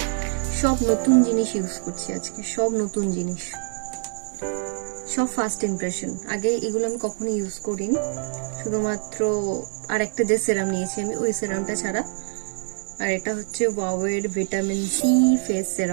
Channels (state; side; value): silent; left; 62 dB below the other